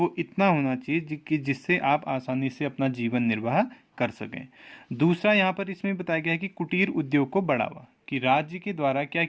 इतना होना चाहिए कि जिससे आप आसानी से अपना जीवन निर्वाह कर सकें। दूसरा यहाँ पर इसमें बताया गया है कि कुटीर उद्योग को बढ़ावा, कि राज्य के द्वारा क्या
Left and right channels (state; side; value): identical; both; correlation 1.00